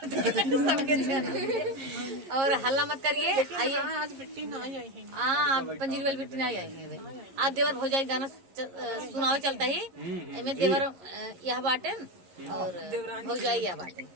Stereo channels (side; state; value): left; late; 11 ms